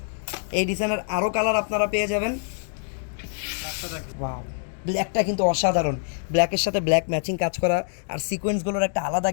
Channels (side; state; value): right; silent; digital silence